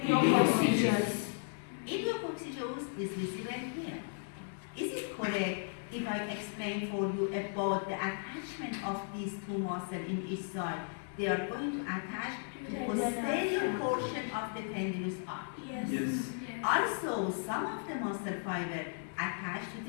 Edu.m. Edu.m is visible here. Is it correct if I explain for you about the attachment of these two muscles in each side? they are going to attach to the The posterior nerve. portion of the tendinous arc. Yes. Yes. Also, some of the muscle fiber attach to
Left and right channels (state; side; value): silent; right; digital silence